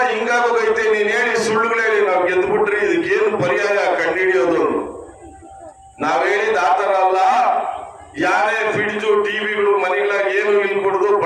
ಹಿಂಗಾಗೋಗೈತೆ, ನೀನ್ ಹೇಳಿ ಸುಳ್ಳುಗಳು ಹೇಳಿ ನಾವ್ ಗೆದ್ದು ಬಿಟ್ರಿ, ಇದಕ್ಕೇನು ಪರ್ಯಾಯ ಕಂಡುಹಿಡಿಯೋದು? ನಾವ್ ಹೇಳಿದ ಆತರ ಅಲ್ಲ. ಯಾರೇ ಫ್ರಿಡ್ಜು ಟಿವಿಗಳು ಮನೆಗಳಾಗ ಏನು ಇಲ್ಲಿ ಕೊಡುದು,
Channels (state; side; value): identical; both; correlation 1.00